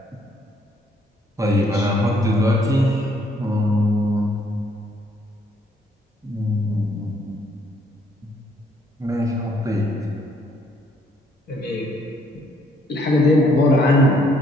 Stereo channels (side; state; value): both; normal; correlation 0.67